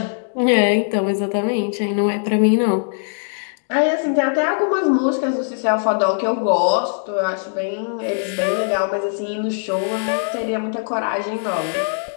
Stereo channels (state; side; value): silent; right; digital silence